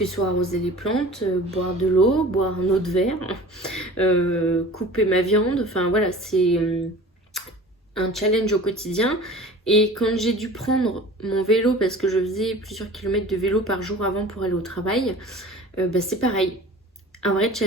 ce soit arroser les plantes, boire de l'eau, boire un eau de verre, couper ma viande, enfin voilà, c'est un challenge au quotidien. Et quand j'ai dû prendre mon vélo, parce que je faisais plusieurs kilomètres de vélo par jour avant pour aller au travail, c'est pareil. Un vrai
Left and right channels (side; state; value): both; normal; correlation 0.41